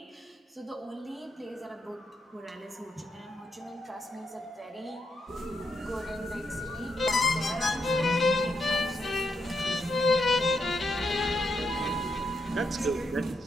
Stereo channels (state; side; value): normal; both; correlation 0.80